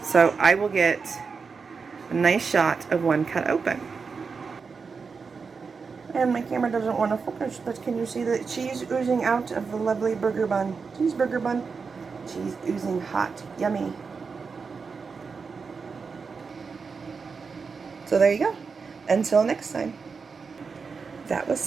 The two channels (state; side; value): quieter; left; 5.1 dB